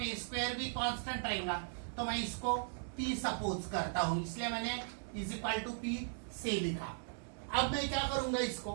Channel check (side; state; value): left; silent; digital silence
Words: a स्क्वायर भी कांस्टेंट रहेगा, तो मैं इसको p सपोज करता हूं, इसलिए मैंने इज इक्वल टू p से लिखा। अब मैं क्या करूंगा, इसको